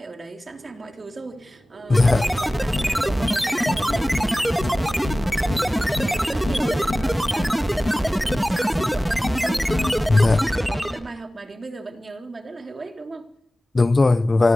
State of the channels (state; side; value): normal; both; correlation 0.97